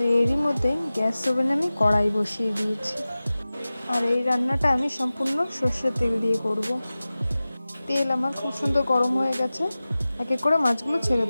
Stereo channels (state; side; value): inverted; both; correlation -0.97